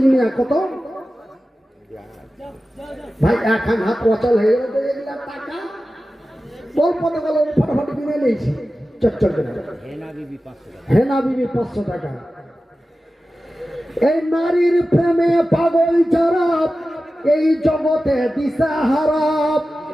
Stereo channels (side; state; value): both; normal; correlation 0.94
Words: মিয়া কত ভাই? এখন হাত অচল হয়ে গেল তো এগুলা টাকা গল্প তো গেল, ফটাফট কিনে নিয়েছি চটচট করে। হেনা বিবি 500 টাকা। এই নারীর প্রেমে পাগল যারা এই জগতে দিশাহারা,